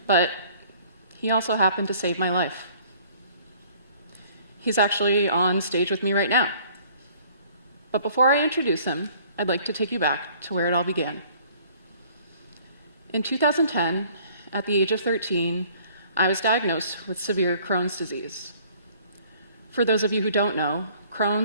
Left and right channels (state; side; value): inverted; both; correlation -0.55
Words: but he also happened to save my life. He's actually on stage with me right now. But before I introduce him, I'd like to take you back to where it all began. In 2010, at the age of 13, I was diagnosed with severe Crohn's disease. For those of you who don't know,